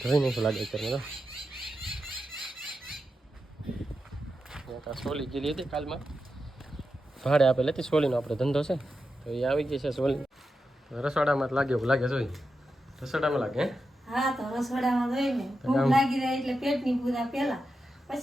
ધોઈ નહીં લાગે અત્યારે. સોલી ગયેલી હતી કાલમાં, ભાડે આપેલી હતી સોલીનો આપણે ધંધો છે તો એ આવી ગઈ છે સોલી. રસોડામાં જ લાગે એવું લાગે જોઈ. રસોડામાં લાગે? હા તો રસોડામાં જોઈને ભૂખ લાગી જાય એટલે પેટની પૂજા પહેલા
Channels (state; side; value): normal; both; correlation 0.89